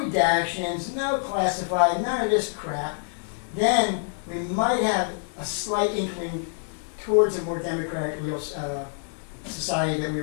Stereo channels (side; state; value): right; silent; 61 dB below the other